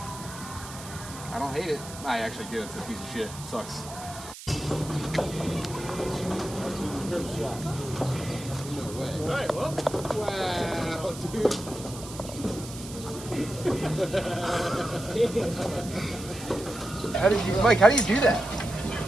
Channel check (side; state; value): right; noise; hiss, 13 dB below the sound